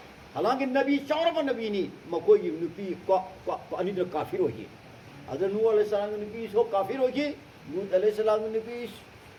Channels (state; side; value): identical; both; correlation 1.00